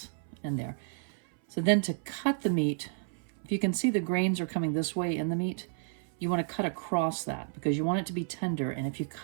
in there. So then to cut the meat, if you can see the grains are coming this way in the meat, you want to cut across that because you want it to be tender. And if you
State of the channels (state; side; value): silent; left; 57 dB below the other